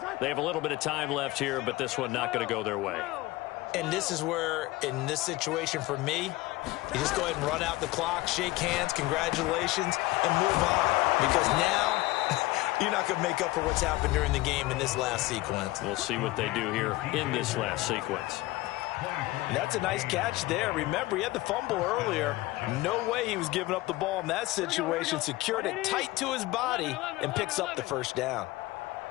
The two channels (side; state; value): right; quieter; 19.3 dB